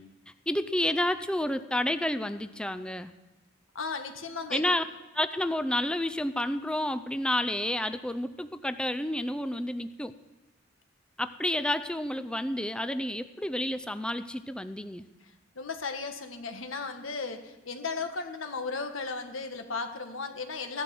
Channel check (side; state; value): both; normal; correlation 0.69